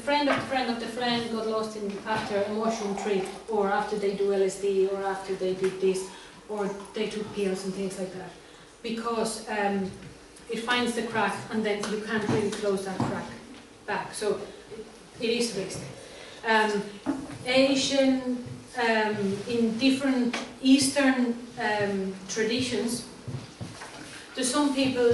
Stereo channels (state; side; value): identical; both; correlation 1.00